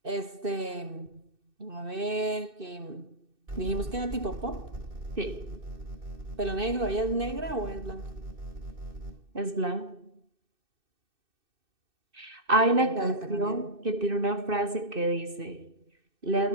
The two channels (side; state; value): left; late; 2.6 ms